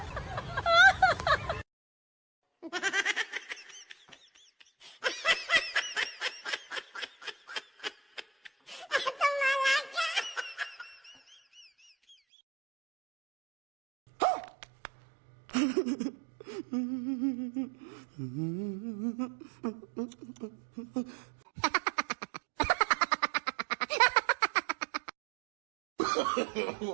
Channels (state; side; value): drops out; left; at 12.2 s